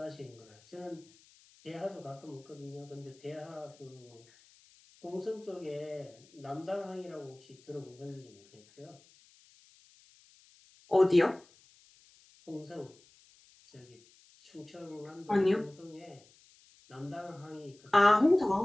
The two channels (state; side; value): noise; left; hiss, 27 dB below the sound